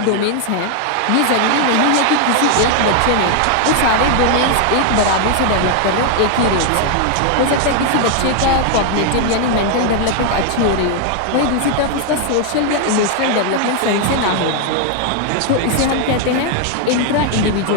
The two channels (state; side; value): different; both; correlation 0.00